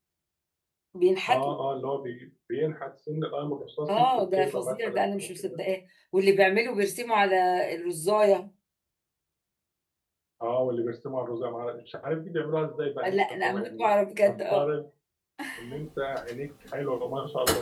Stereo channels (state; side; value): identical; both; correlation 1.00